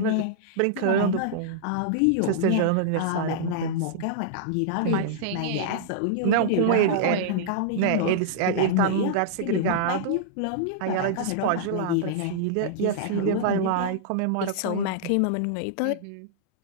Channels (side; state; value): both; different; correlation -0.02